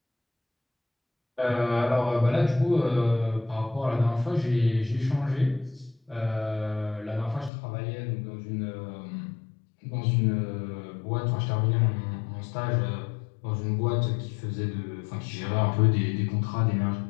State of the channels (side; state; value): right; drops out; at 7.5 s